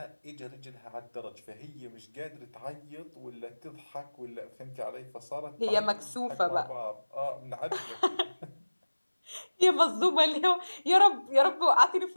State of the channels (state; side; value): inverted; both; correlation -1.00